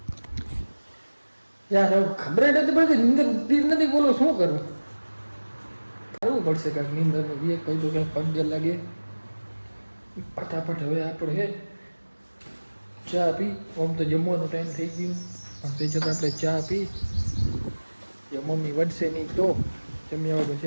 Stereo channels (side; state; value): both; inverted; correlation -1.00